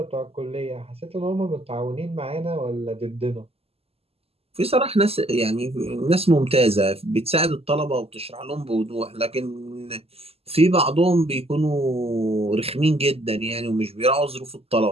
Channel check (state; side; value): late; left; 0.29 ms